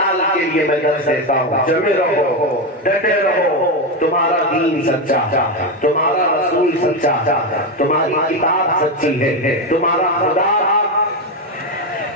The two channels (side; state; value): both; normal; correlation 0.11